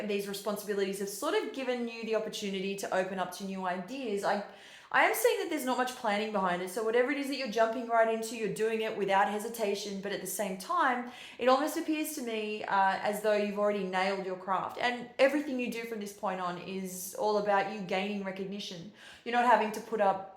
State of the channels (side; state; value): both; identical; correlation 1.00